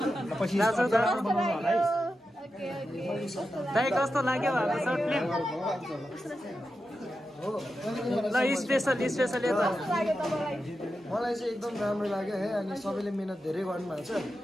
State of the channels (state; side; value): normal; both; correlation 0.90